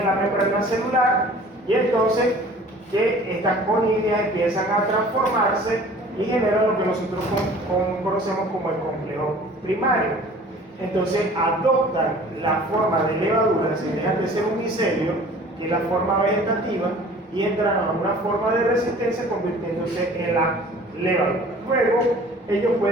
la membrana celular y entonces que estas conidias empiezan a transformarse y generan lo que nosotros conocemos como el complejo primario. Entonces adoptan la forma de levadura, se dejan de ser un micelio, que es la forma vegetativa, y entran a una forma de resistencia convirtiéndose en la levadura. Luego, ellos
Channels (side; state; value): both; normal; correlation 0.48